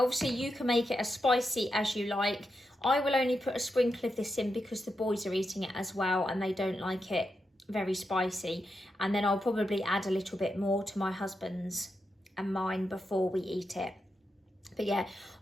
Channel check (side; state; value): both; normal; correlation 0.86